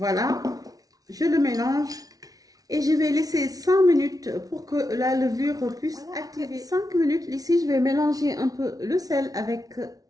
je le mélange et je vais laisser 5 minutes pour que la levure puisse activer. 5 minutes, ici, je vais mélanger un peu le sel avec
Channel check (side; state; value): left; late; 0.18 ms